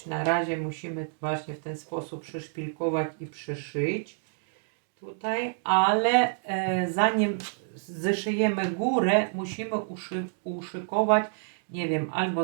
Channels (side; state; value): left; silent; digital silence